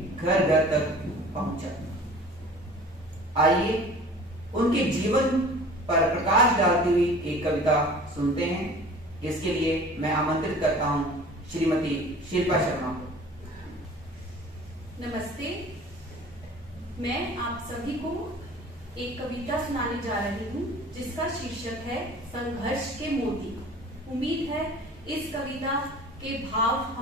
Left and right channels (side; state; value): both; normal; correlation 0.44